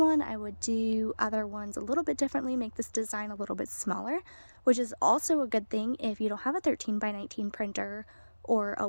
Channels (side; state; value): both; inverted; correlation -1.00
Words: I would do other ones a little bit differently, make this design a little bit smaller, which is also a good thing if you don't have a 13 by 19 printer or a